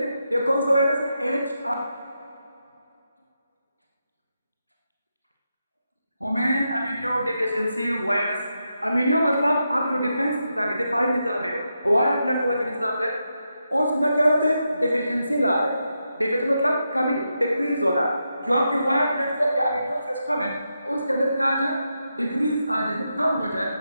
ये कौन सा वायरस है? Human immuno deficiency virus. Immuno मतलब आप जो डिफेंस निजाम है, दिफाई निजाम है, वायर ब्लड वाला जो निजाम है, उसमें क्या होता है? डिफिशिएंसी ला रहे हैं। डिफिशिएंसी मतलब कमी, डिक्रीज होना। जो आपके वायर ब्लड सेल या इम्यून सिस्टम है, उसके अंदर क्या आ जाए? डिक्रीज आ जाए, कम हो जाए।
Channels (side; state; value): both; inverted; correlation -0.86